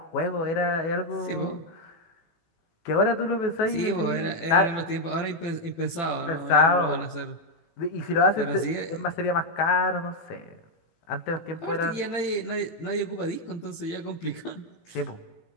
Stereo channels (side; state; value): right; late; 18 ms